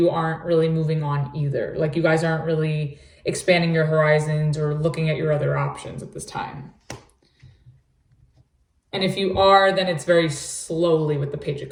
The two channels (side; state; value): both; identical; correlation 1.00